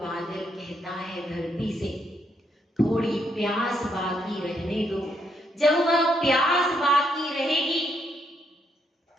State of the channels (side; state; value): both; normal; correlation 0.75